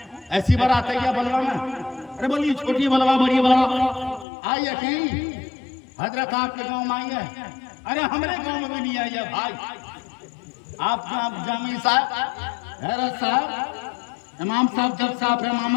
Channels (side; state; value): right; drops out; at 4.2 s